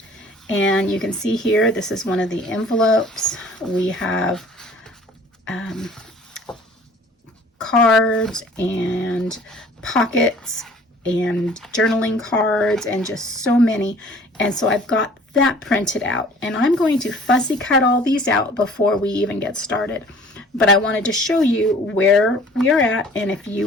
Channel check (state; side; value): normal; both; correlation 0.50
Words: And you can see here, this is one of the envelopes. We have cards and pockets and journaling cards and just so many. And so I've got that printed out, and I'm going to fussy cut all these out before we even get started. But I wanted to show you where we are at, and if you